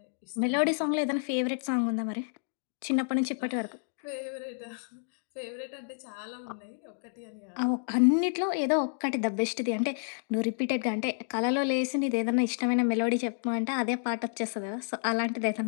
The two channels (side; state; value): right; silent; digital silence